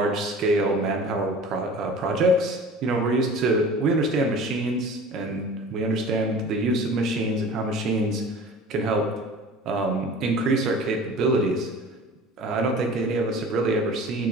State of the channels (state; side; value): normal; both; correlation 0.41